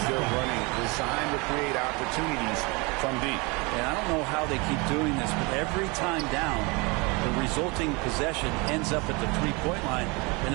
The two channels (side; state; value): left; quieter; 27.7 dB